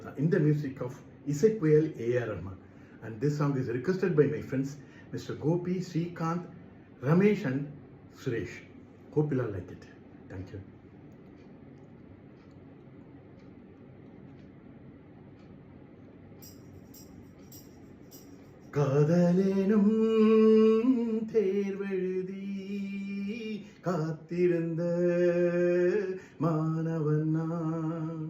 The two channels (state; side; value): identical; both; correlation 1.00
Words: in the music of இசைப்புயல் A.R. Rahman. And this song is requested by my friends Mr. Gopi, Srikanth, Ramesh and Suresh. Hope you'll like it. Thank you. காதலேனும் தேர்வெழுதி காத்திருந்த மாணவன்